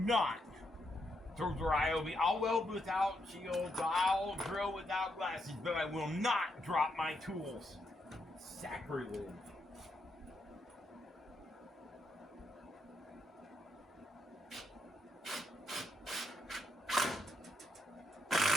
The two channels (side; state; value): both; normal; correlation 0.80